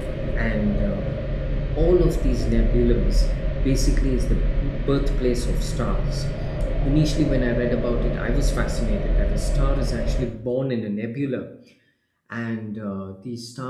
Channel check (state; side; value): identical; both; correlation 1.00